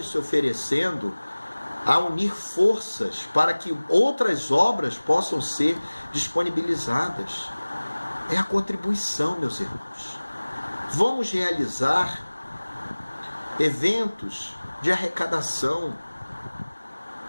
se oferecendo a unir forças para que outras obras possam ser disponibilizadas. É a contribuição, meus irmãos. Vamos realizar eventos de arrecadação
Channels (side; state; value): both; inverted; correlation -1.00